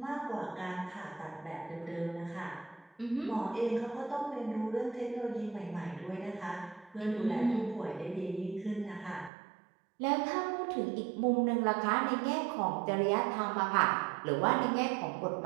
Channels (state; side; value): drops out; left; at 9.3 s